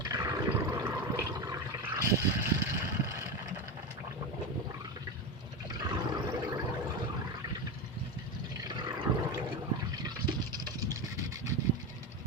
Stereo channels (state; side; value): normal; both; correlation 0.18